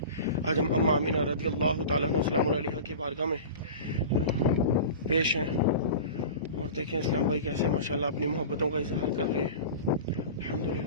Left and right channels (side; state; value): both; inverted; correlation -0.34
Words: आज हम अम्मा आमिना रज़ियल्लाहु ताला अन्हा की बारगाह में पेश हैं। और देखें इस्लाम भाई कैसे माशाल्लाह अपनी मोहब्बतों का इजहार कर रहे हैं।